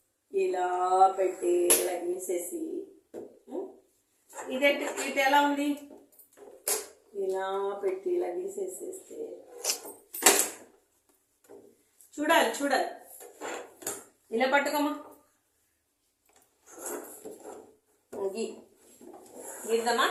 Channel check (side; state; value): both; identical; correlation 1.00